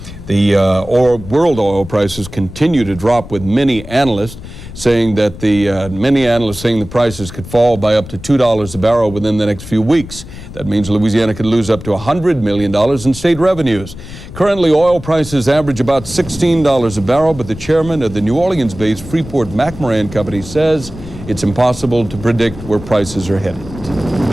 The world oil prices continue to drop, with many analysts saying that the prices could fall by up to $2 a barrel within the next few weeks. That means Louisiana could lose up to $100 million in state revenues. Currently, oil prices average about $16 a barrel, but the chairman of the New Orleans-based Freeport-McMoran company says it's impossible to predict where prices are headed.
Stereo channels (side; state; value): left; noise; rumble, 14 dB below the sound